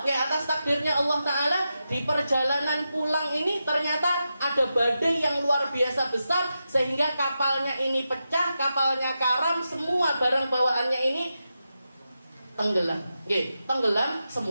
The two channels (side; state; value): both; inverted; correlation -0.89